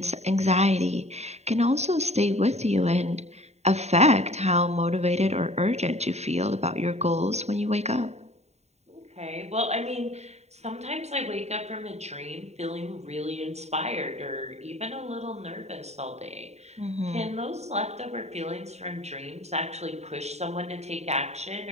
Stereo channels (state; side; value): late; left; 0.32 ms